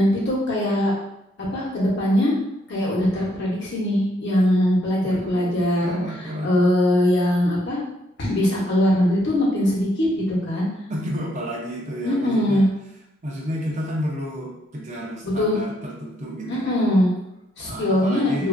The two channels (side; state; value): both; normal; correlation 0.73